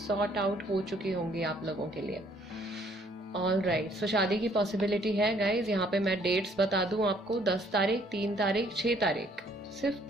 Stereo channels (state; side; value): normal; both; correlation 0.63